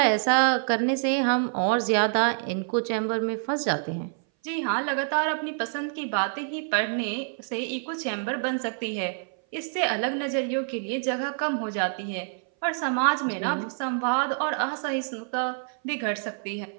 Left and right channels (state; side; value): silent; left; 58 dB below the other